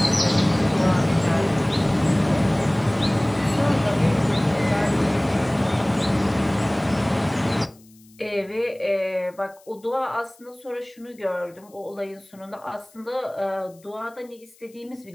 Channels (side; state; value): left; noise; hiss, 29 dB below the sound